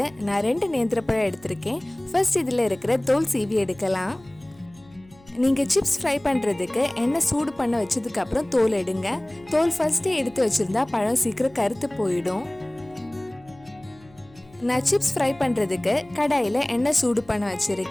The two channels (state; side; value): noise; left; hum, 26 dB below the sound